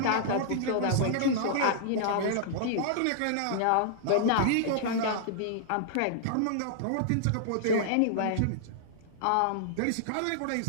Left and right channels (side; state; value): both; different; correlation -0.01